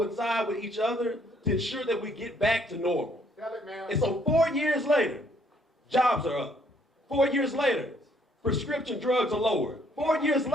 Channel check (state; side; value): normal; both; correlation 0.66